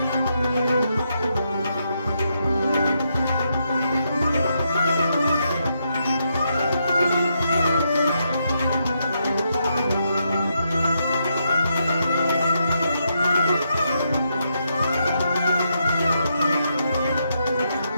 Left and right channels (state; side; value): inverted; both; correlation -0.80